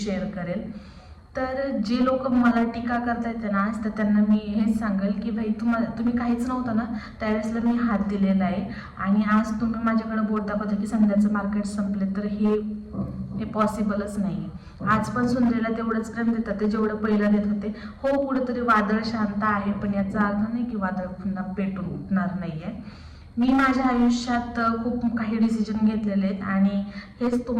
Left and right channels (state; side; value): identical; both; correlation 1.00